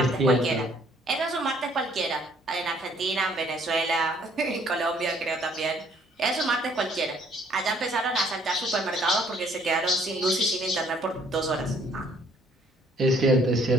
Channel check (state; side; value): normal; both; correlation 0.63